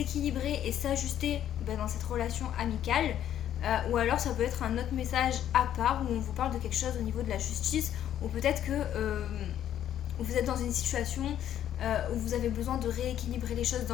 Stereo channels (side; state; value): right; quieter; 10.8 dB